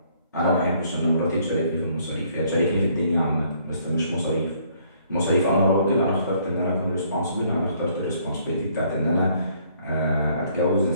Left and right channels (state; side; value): inverted; both; correlation -0.64